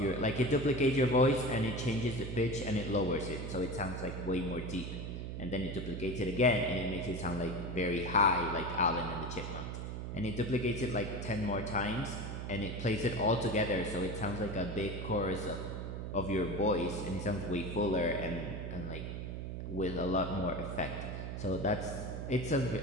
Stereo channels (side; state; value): right; noise; hum, 5 dB below the sound